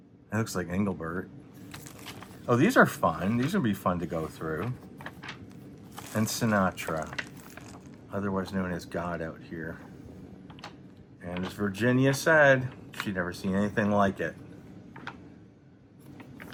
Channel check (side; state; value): both; identical; correlation 1.00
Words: looks like Engelbert. Oh, these are fun. These would be fun to go through. And Sinatra, otherwise known as God out here. And as Virginia said, she'd never seen anything like it.